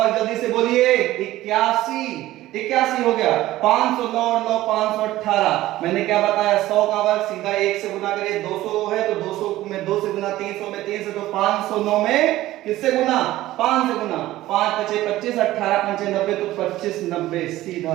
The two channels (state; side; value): quieter; left; 15.8 dB